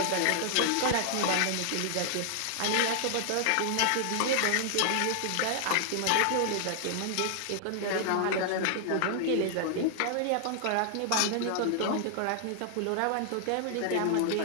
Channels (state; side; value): different; both; correlation 0.00